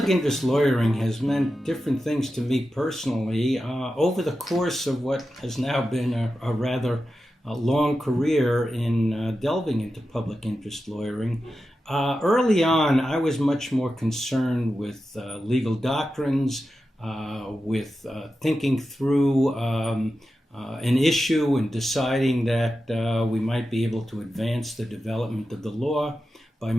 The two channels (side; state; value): both; normal; correlation 0.91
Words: interest lawyering has meant different things to me personally over the course of what has now been a rather long career in delving into public interest lawyering. Early on, I was much more concerned with legal doctrines, with thinking through an issue and deciding that we might be able to advance the development of the law by